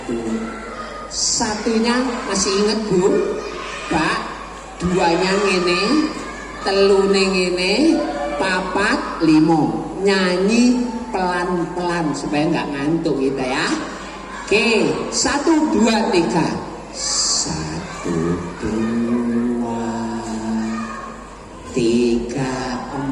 satunya masih inget Bu? Pak, duanya ngene, telune ngene, papat, limo. Nyanyi pelan-pelan supaya nggak ngantuk kita ya. Oke, 1, 2, 3. 1, 2, 3,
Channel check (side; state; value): both; identical; correlation 1.00